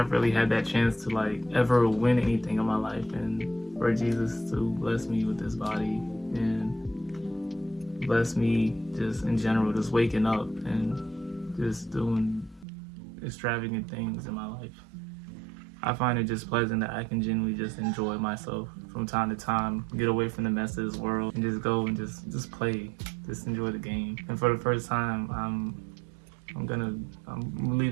really had that chance to like ever win anything in my life, and for Jesus to bless me with this body and bless me just in general, just waking up and just doing extravagant things in my life. I find it just pleasant that I can genuinely just enjoy myself from time to time, get away from the mess of this world, and just go and just play, just enjoy the game. And for the first time, I'm gonna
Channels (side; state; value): left; drops out; at 12.7 s